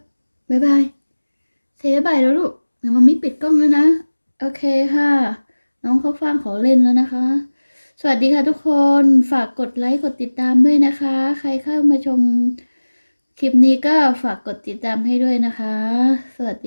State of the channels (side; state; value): both; inverted; correlation -1.00